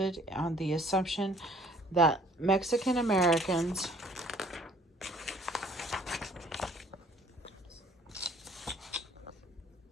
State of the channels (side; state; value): both; normal; correlation 0.57